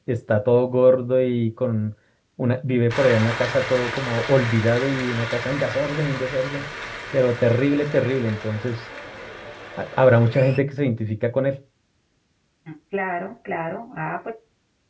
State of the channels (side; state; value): both; identical; correlation 1.00